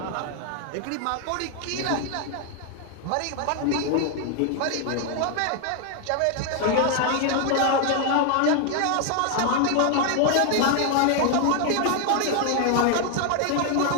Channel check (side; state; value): both; different; correlation 0.00